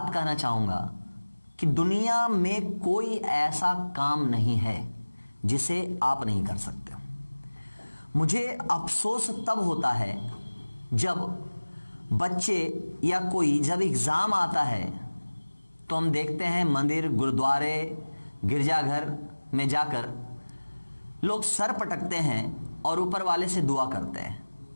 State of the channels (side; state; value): both; inverted; correlation -1.00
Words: कहना चाहूँगा कि दुनिया में कोई ऐसा काम नहीं है जिसे आप नहीं कर सकते हो। मुझे अफसोस तब होता है जब बच्चे या कोई जब एग्ज़ाम आता है तो हम देखते हैं मंदिर, गुरुद्वारे, गिरजाघर में जाकर लोग सर पटकते हैं और ऊपर वाले से दुआ करते हैं।